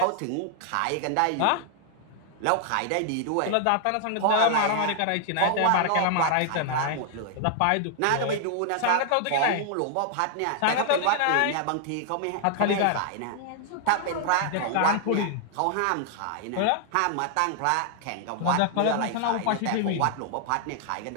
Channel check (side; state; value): both; different; correlation 0.00